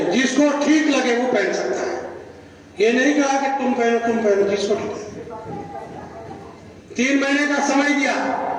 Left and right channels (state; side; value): identical; both; correlation 1.00